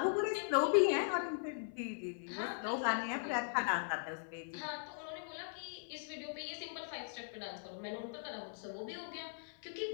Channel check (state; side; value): silent; right; 51 dB below the other